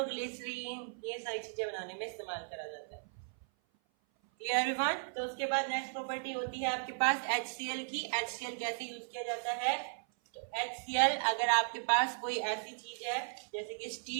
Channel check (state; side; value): silent; left; 54 dB below the other